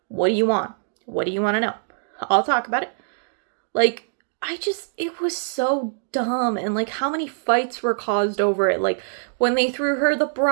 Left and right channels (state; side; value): silent; left; digital silence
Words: What do you want? What do you want to know? I'll talk about it. Like, it was so dumb. And, like, how many fights were caused over it. Like, when they threw her the